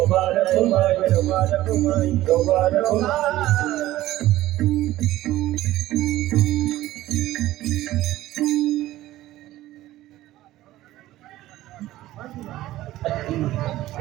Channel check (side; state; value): left; quieter; 15.5 dB